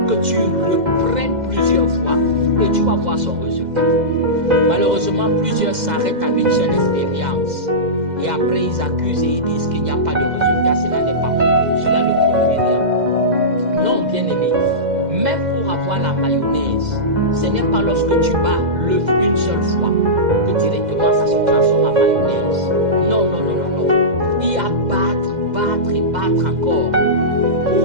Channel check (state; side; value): late; left; 2.1 ms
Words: que tu reprennes plusieurs fois et tu vas voir son résultat. Malheureusement, plusieurs s'arrêtent à une seule expérience. Et après, ils accusent et ils disent qu'il n'y a pas de résultat. Cela n'est pas bon. Cela ne produit rien. Non, bien-aimé. Même pour avoir la mayonnaise, ce n'est pas lorsque tu bats l'œuf une seule fois que directement ça se transforme en mayonnaise. Non, non, non, non, non. Il y a battre et battre encore